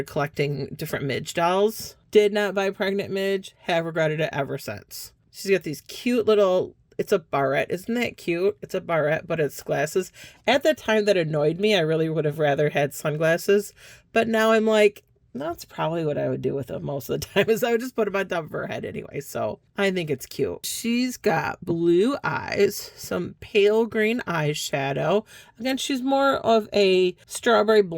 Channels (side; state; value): both; identical; correlation 1.00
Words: collecting different Midge dolls. Did not buy pregnant Midge. Have regretted it ever since. She's got these cute little it's a barrette. Isn't that cute? It's a barrette, but it's glasses. At the time that annoyed me, I really would have rather had sunglasses. But now I'm like, that's probably what I would do with them most of the time, is I would just put them on top of her head anyway. So I think it's cute. She's got blue eyes, some pale green eyeshadow. Again, she's more of a strawberry